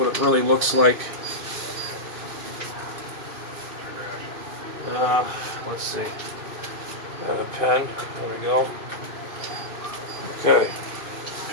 it really looks like. Let's see. Got a pen. There we go. Okay.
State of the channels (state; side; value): late; left; 2.6 ms